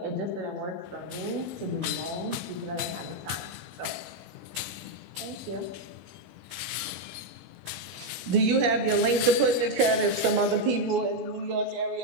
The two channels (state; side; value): late; left; 16 ms